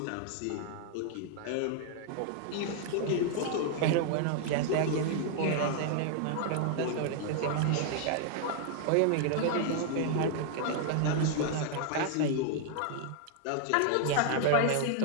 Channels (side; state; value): both; different; correlation 0.00